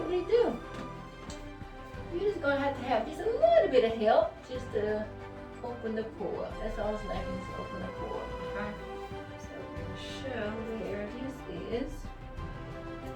do. You're just gonna have just a little bit of help just to open the pore. That's all it's lacking is open the pore, okay? So we're gonna show where this is.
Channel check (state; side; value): identical; both; correlation 1.00